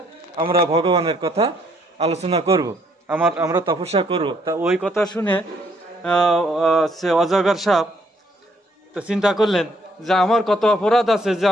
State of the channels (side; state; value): both; normal; correlation 0.68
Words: আমরা ভগবানের কথা আলোচনা করব, আমরা তপস্যা করব। তা ওই কথা শুনে সে অজগর সাপ তো চিন্তা করলেন যে আমার কত অপরাধ আছে যে